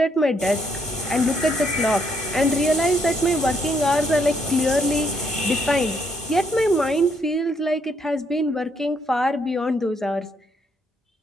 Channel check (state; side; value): normal; both; correlation 0.72